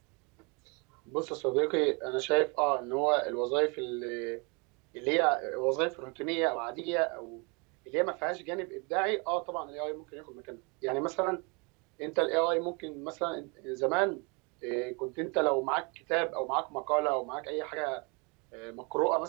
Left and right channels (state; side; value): quieter; left; 31.7 dB